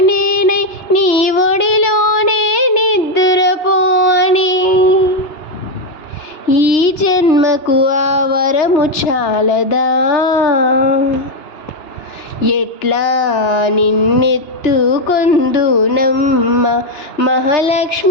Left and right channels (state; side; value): late; right; 2.9 ms